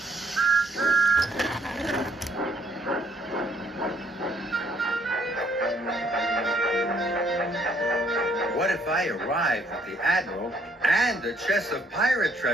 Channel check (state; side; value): normal; both; correlation 0.66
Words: What if I arrive at the Admiral and a chest of pirate